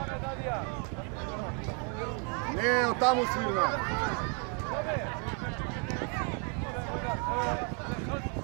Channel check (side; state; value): left; quieter; 38.2 dB